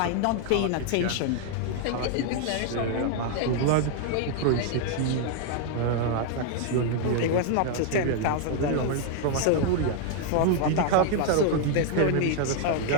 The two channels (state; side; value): different; both; correlation 0.00